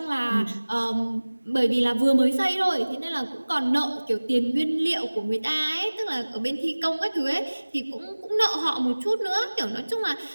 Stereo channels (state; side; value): inverted; both; correlation -1.00